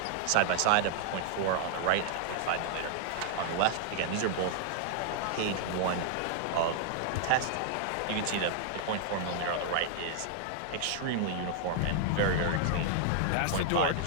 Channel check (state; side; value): different; both; correlation 0.00